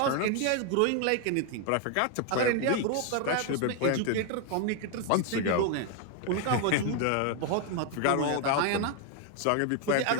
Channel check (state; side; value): different; both; correlation 0.00